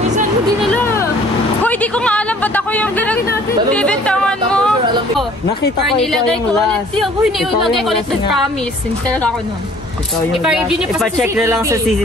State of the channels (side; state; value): both; normal; correlation 0.54